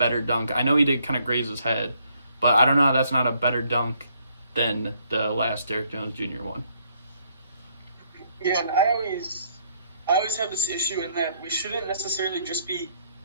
dunk. I know he did kind of graze his head, but I don't know how that's not a better dunk than the last Derrick Jones Jr. one. Yeah, and I always have this issue in that we shouldn't necessarily just be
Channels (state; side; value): inverted; both; correlation -0.69